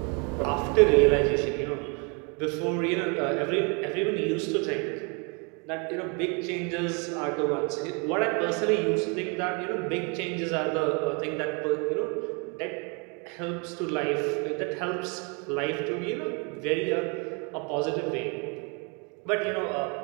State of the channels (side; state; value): left; quieter; 33.5 dB